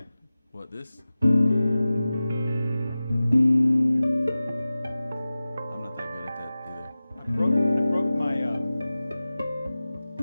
What, this? Yeah. I'm not that good at that either. I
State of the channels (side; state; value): both; inverted; correlation -0.96